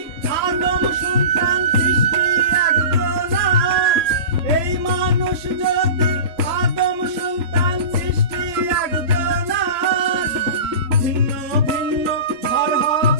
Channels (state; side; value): late; left; 3.0 ms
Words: আদম সন্তান সৃষ্টি একজনা, এই মানুষ যদি আদম সন্তান সৃষ্টি একজনা। ভিন্ন ভিন্ন ঘর